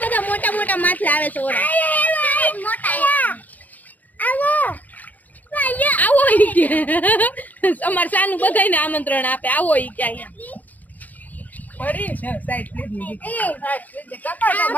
મોટા મોટા માછલા આવે છે આવો ઈ કે અમાર સાનું બધાયને આમંત્રણ આપે આવો ઈ કે અહીંયા પડી છે સાઈડ લીધી એ કાકા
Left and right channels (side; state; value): right; late; 0.080 ms